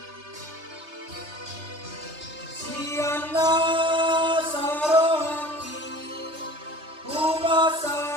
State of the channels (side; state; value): left; late; 3.3 ms